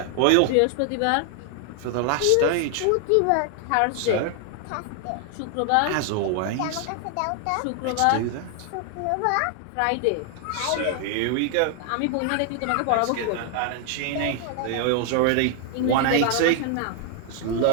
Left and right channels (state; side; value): different; both; correlation 0.00